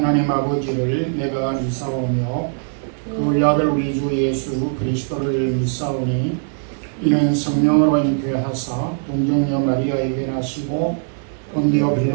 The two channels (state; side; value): silent; left; digital silence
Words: 아버지를 내가 믿사오며 그 아들 우리 주 예수 그리스도를 믿사오니 이는 성령으로 잉태하사 동정녀 마리아에게 나시고 본디오